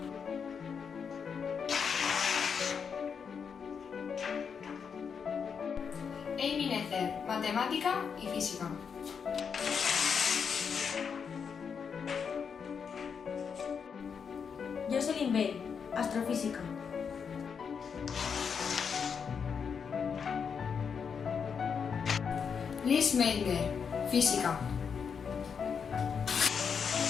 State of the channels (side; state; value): right; quieter; 6.5 dB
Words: Amy Necer, matemática y física. Jocelyn Bell, astrofísica. Liz Meitner, física.